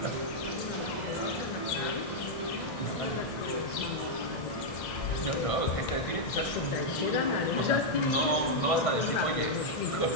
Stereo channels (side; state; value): right; late; 2.1 ms